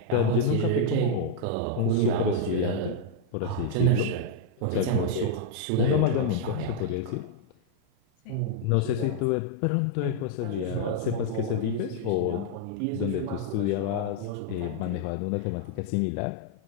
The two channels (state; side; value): different; both; correlation -0.01